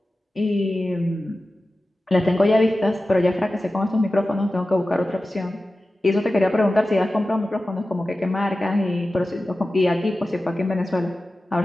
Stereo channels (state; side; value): normal; both; correlation 0.95